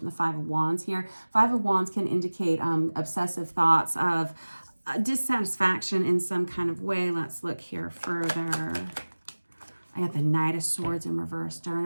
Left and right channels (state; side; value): inverted; both; correlation -1.00